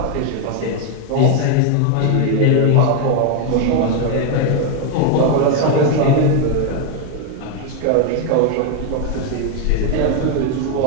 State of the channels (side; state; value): both; different; correlation 0.01